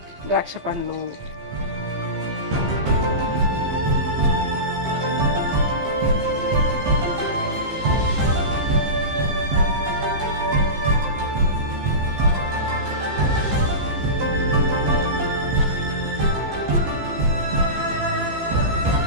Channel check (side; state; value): left; late; 15 ms